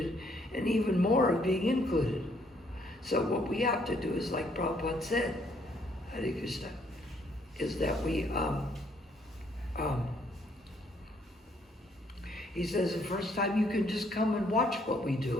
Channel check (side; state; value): both; normal; correlation 0.67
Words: and even more of being included. So what we have to do is, like Prabhupada said, Hare Krishna, is that we, he says the first time you can just come and watch what we